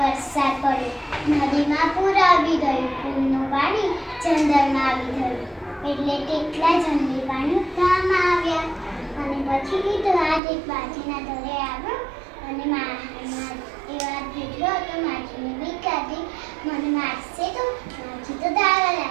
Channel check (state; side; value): drops out; left; at 10.4 s